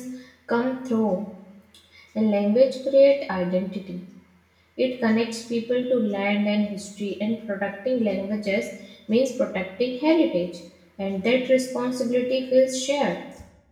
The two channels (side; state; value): both; identical; correlation 1.00